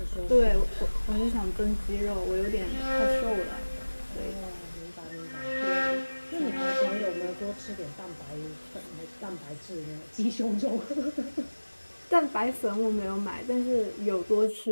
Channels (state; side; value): inverted; both; correlation -1.00